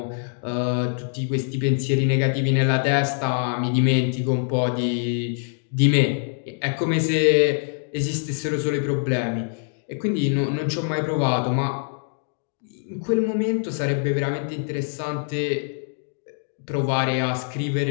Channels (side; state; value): right; silent; digital silence